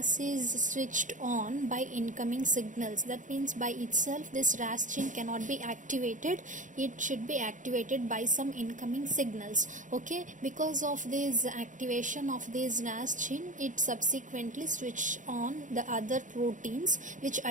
is switched on by incoming signals, that means by itself this RAS gene cannot be activated, it should be activated by some incoming signals. Okay, because of this activation of this RAS gene, it subsequently switch on the other proteins, which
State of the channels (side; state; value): left; late; 0.37 ms